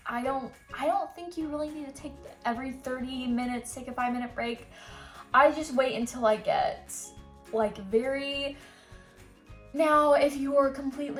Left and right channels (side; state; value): both; identical; correlation 1.00